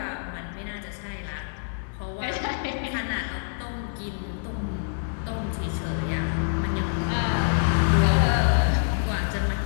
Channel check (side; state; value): right; silent; digital silence